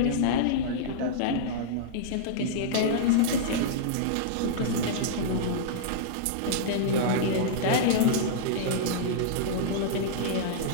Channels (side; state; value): both; different; correlation -0.02